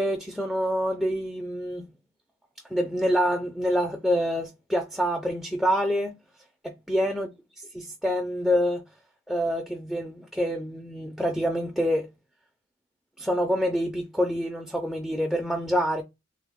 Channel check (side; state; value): both; normal; correlation 0.83